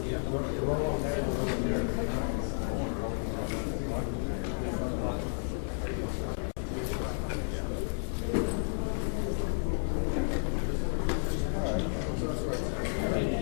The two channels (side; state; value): right; silent; digital silence